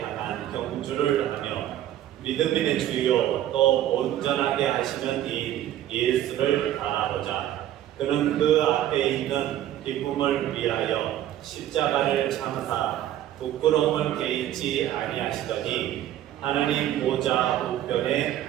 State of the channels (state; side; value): quieter; left; 12.3 dB